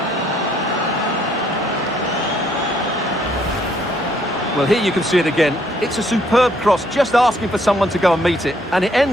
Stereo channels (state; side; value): normal; both; correlation 0.67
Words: Well, here you can see it again. It's a superb cross, just asking for someone to go and meet it. And it